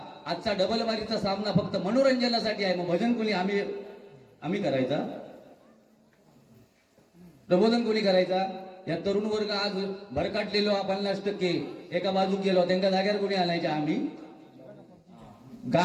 आजचा डबल वारीचा सामना फक्त मनोरंजनासाठी आहे. मग भजन कोणी आम्ही करायचा? प्रबोधन कोणी करायचा? या तरुण वर्ग आज भरकाटलेलो 50% एका बाजूक गेलो, त्यांच्या जाग्यावर कोणी आणायच्या? आम्ही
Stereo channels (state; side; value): identical; both; correlation 1.00